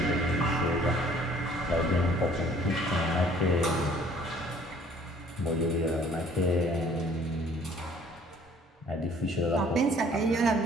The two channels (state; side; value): normal; both; correlation 0.56